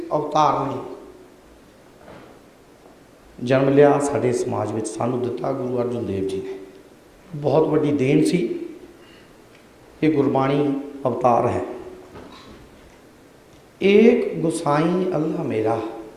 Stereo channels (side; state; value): both; identical; correlation 1.00